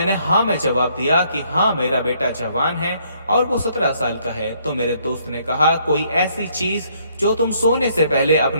हाँ में जवाब दिया कि हाँ मेरा बेटा जवान है और वो 17 साल का है। तो मेरे दोस्त ने कहा, कोई ऐसी चीज जो तुम सोने से पहले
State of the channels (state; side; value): inverted; both; correlation -0.67